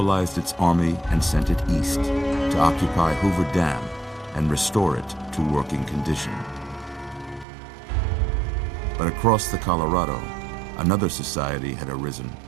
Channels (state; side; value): drops out; left; at 7.5 s